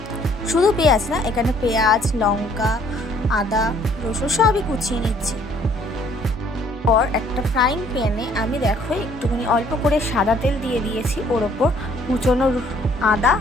শুধু পেঁয়াজ না, এখানে পেঁয়াজ, লঙ্কা, আদা, রসুন সবই কুচিয়ে নিচ্ছি। পর একটা ফ্রাইং প্যানে আমি দেখো একটুখানি অল্প করে সাদা তেল দিয়ে দিয়েছি। ওর ওপর কুচনো আদা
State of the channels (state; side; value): normal; both; correlation 0.61